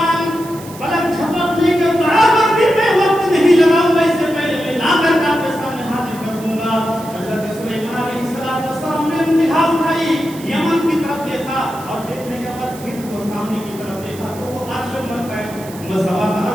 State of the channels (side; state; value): right; noise; hiss, 18 dB below the sound